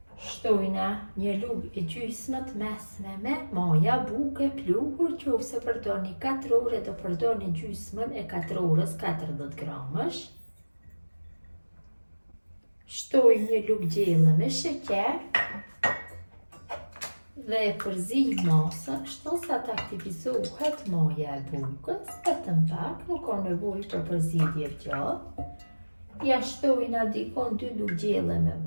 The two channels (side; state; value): both; inverted; correlation -1.00